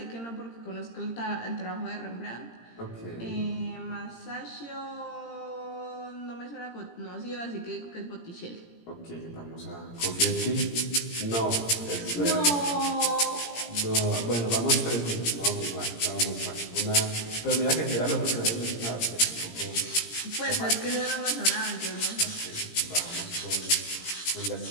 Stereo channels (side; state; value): right; late; 17 ms